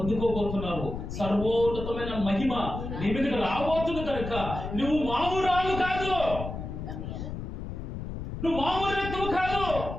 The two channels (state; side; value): noise; left; rumble, 7 dB below the sound